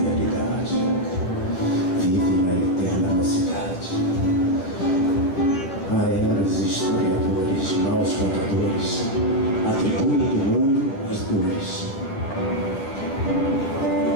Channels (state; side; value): late; right; 11 ms